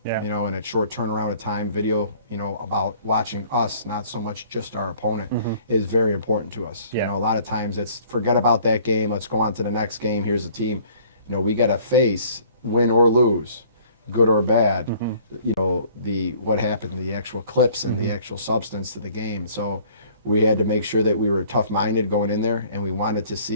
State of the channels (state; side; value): inverted; both; correlation -0.55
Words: and at short turnaround of time, video, about watching us, not so much just our opponent, is very important to us. A lot of times it's forget about that game, let's go on to the next game, here's the team. We got to face, win or lose, good or bad, what happened, the actual clips and the actual substance to the game. So we had to make sure that we were tough-minded going in there, and we wanted to